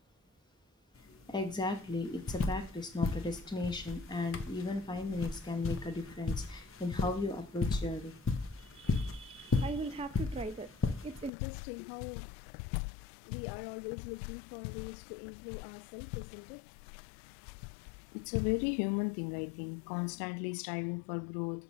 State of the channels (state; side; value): drops out; right; at 11.3 s